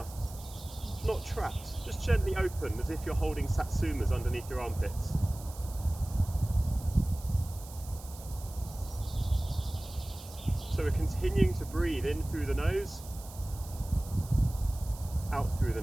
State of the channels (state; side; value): noise; right; hiss, 17 dB below the sound